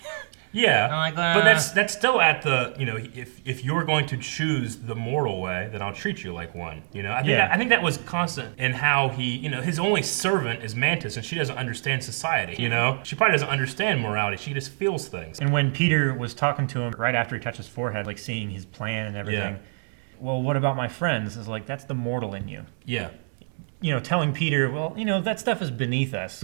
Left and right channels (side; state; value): left; silent; digital silence